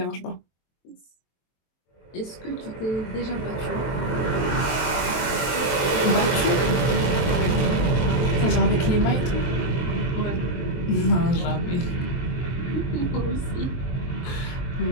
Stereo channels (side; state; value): right; late; 22 ms